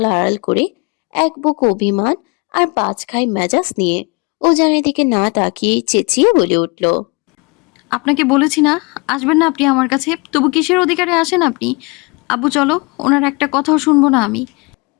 আড়াল করে এক বুক অভিমান আর পাঁচখাই মেজাজ নিয়ে উজানের দিকে না তাকিয়ে চেঁচিয়ে বলে উঠল। আপনাকে বলেছি না আসবেন না আপনি আমার কাছে, তবু কিসের অধিকারে আসেন আপনি? আব্বু চলো, ওনার একটা কথাও শুনবো না আমি।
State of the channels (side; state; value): right; quieter; 29.0 dB